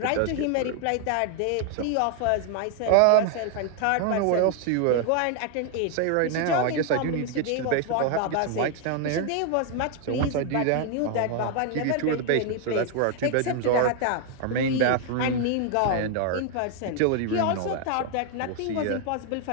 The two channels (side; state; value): both; different; correlation 0.01